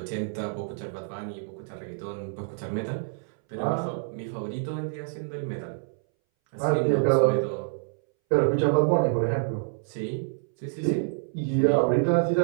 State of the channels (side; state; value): left; silent; 60 dB below the other